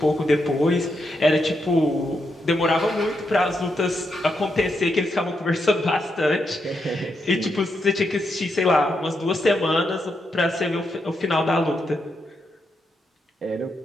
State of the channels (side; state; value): both; normal; correlation 0.82